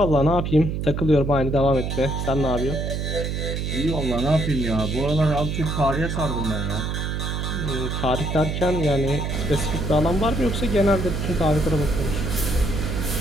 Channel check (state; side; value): noise; right; hum, 2 dB below the sound